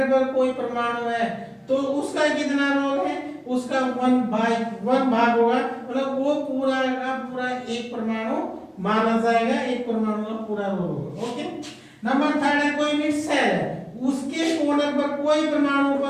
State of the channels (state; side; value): identical; both; correlation 1.00